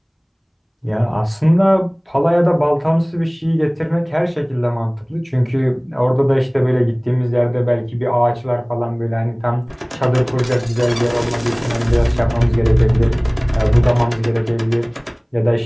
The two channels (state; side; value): identical; both; correlation 1.00